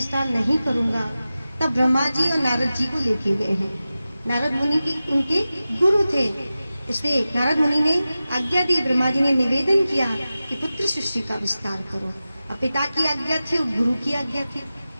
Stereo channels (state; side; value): inverted; both; correlation -0.95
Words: नहीं करूंगा। तब ब्रह्मा जी और नारद जी को लेके गए हैं। नारद मुनि की उनके गुरु थे, इसलिए नारद मुनि ने आज्ञा दी, ब्रह्मा जी ने निवेदन किया कि पुत्र सृष्टि का विस्तार करो। और पिता की आज्ञा थी और गुरु की आज्ञा थी,